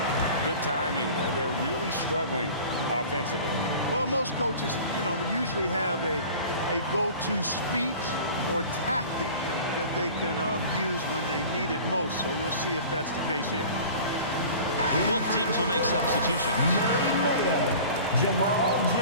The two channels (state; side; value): inverted; both; correlation -0.41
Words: Good timing. They're really struggling offensively. Well, most coaches, usually have a go-to speech or tactic that they can use when they need it most. So we'll see if that's the case here. Both teams will make substitutions. Mayor, Jamal